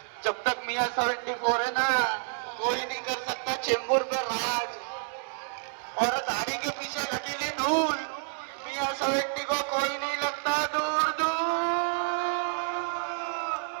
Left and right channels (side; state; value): left; silent; 57 dB below the other